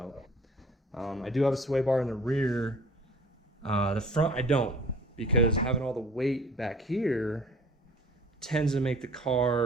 I do have a sway bar in the rear. The front I don't, because having all the weight back here tends to make the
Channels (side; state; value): both; normal; correlation 0.48